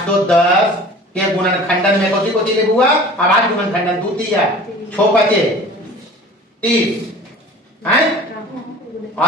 के गुणनखंडन में कोची कोची ले हुआ अभाज्य गुणनखंडन 2 3 6 5 30 हैं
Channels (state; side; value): normal; both; correlation 0.43